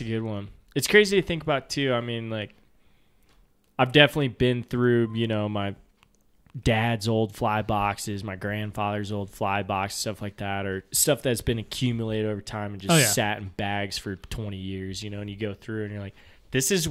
a good one. It's crazy to think about, too. I've definitely been through, my dad's old fly boxes, my grandfather's old fly box, stuff like that, or stuff that's been accumulated over time and just sat in bags for 20 years, and you go through and you're like, this is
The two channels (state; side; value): identical; both; correlation 1.00